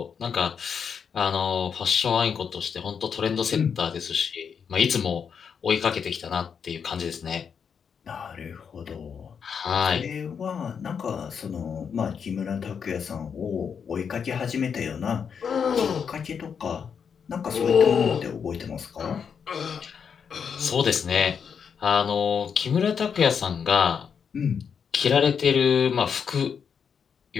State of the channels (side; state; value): right; quieter; 6.8 dB